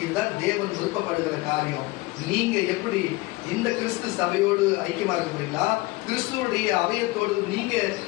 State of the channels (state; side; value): quieter; right; 21.4 dB